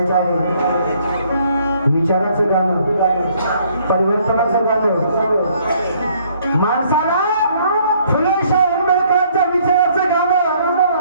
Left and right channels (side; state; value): both; inverted; correlation -0.64